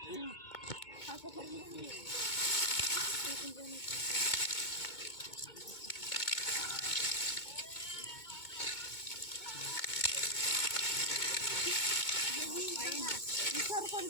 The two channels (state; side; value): late; right; 2.2 ms